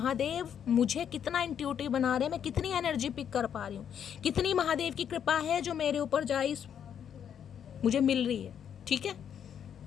मुझे कितना इंट्यूटिव बना रहे हैं, मैं कितनी एनर्जी पिक कर पा रही हूँ, कितनी महादेव की कृपा है जो मेरे ऊपर गाइस मुझे मिल रही है। ठीक है,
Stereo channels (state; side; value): quieter; right; 8.6 dB